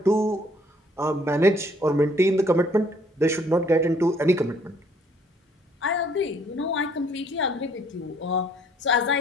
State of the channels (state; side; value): normal; both; correlation 0.62